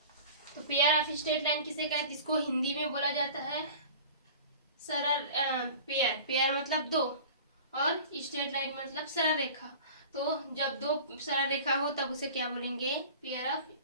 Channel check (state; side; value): inverted; both; correlation -0.40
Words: तो पेयर ऑफ स्ट्रेट लाइन किसे कहते हैं? इसको हिंदी में बोला जाता है सरल पेयर। पेयर मतलब 2 और स्ट्रेट लाइन मतलब सरल रेखा। तो जब 2 सरल रेखा हो तब उसे क्या बोलेंगे? Pair of